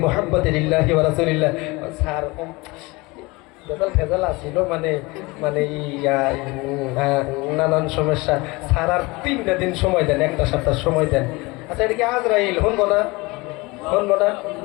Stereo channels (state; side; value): quieter; right; 24.0 dB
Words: মুহাম্মাদিন লিল্লাহি ওয়া রাসূলিল্লাহ। স্যার ফেজাল আসছিল, মানে নানান সমস্যা। স্যার আর 3টা দিন সময় দেন, একটা সপ্তাহ সময় দেন। আচ্ছা, এটা কি আজরাইল শুনবো না?